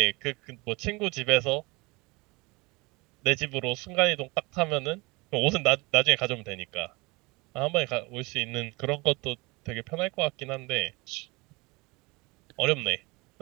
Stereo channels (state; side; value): quieter; left; 25.4 dB